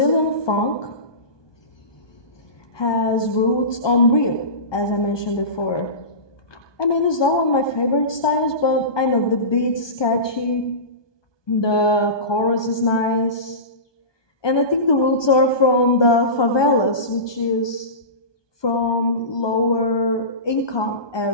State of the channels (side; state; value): right; late; 1.2 ms